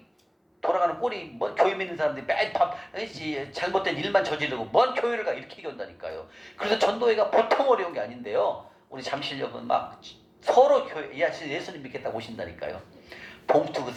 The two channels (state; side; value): identical; both; correlation 1.00